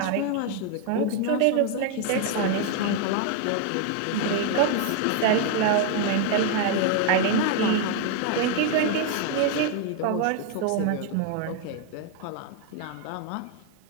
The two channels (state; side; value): different; both; correlation 0.00